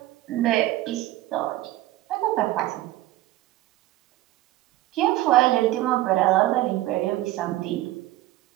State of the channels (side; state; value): left; quieter; 16.1 dB